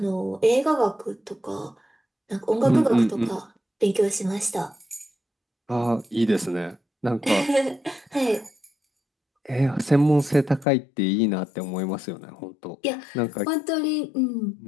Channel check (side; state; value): right; drops out; at 10.7 s